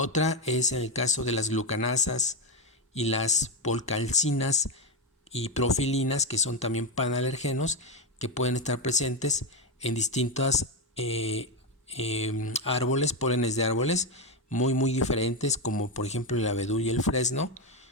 es en el caso de las glucanasas y las polcalcinas y profilinas, que son también panalergenos, que pueden estar presentes en distintos árboles, pólenes de árboles muy diferentes, como por ejemplo el abedul y el fresno,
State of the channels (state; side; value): normal; both; correlation 0.09